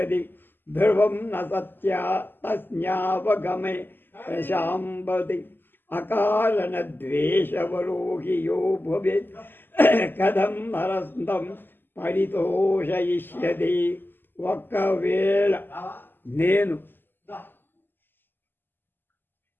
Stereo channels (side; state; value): right; late; 0.095 ms